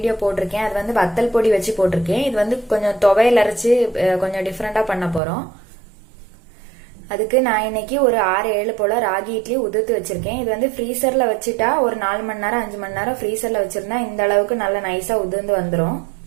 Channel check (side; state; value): left; drops out; at 5.2 s